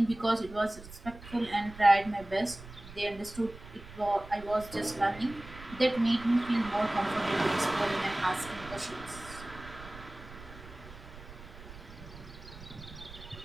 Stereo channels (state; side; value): noise; right; rumble, 16 dB below the sound